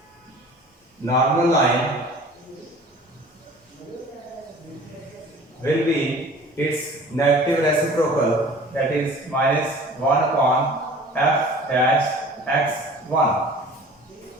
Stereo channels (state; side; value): normal; both; correlation 0.45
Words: normal line will be its negative reciprocal, that is minus 1 upon f dash x1.